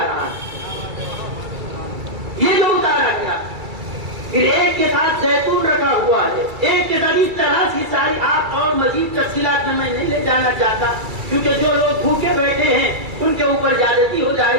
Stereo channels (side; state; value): left; late; 2.3 ms